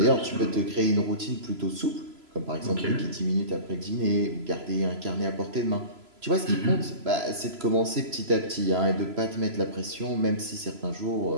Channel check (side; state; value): left; late; 3.0 ms